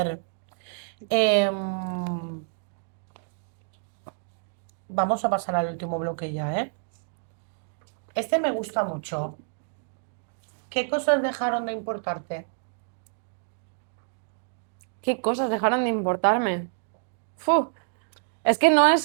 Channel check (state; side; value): silent; left; digital silence